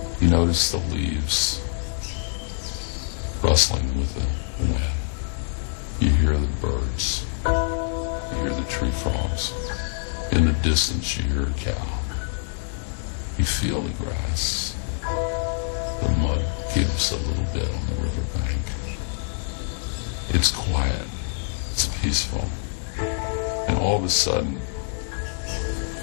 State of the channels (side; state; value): right; silent; digital silence